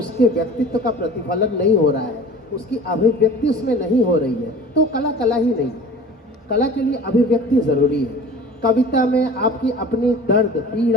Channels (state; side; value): normal; both; correlation 0.41